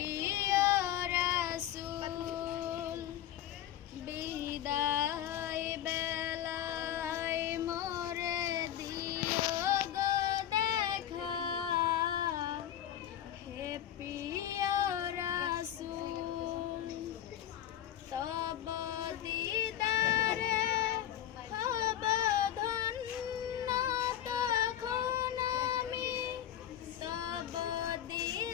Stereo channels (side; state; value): right; quieter; 11.3 dB